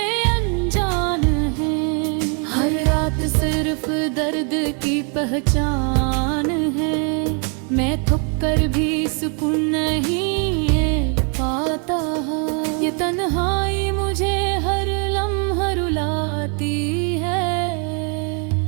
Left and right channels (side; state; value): left; quieter; 38.9 dB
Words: अनजान हैं, हर रात सिर्फ दर्द की पहचान है। मैं थक कर भी सुकून नहीं पाता, ये तन्हाई मुझे हर लम्हा रुलाती है।